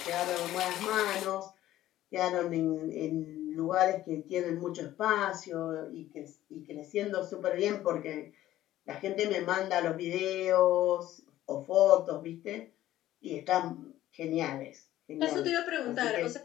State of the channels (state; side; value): quieter; right; 14.0 dB